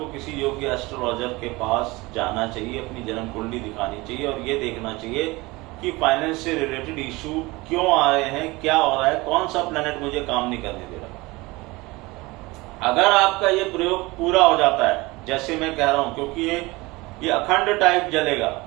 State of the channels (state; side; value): quieter; left; 22.4 dB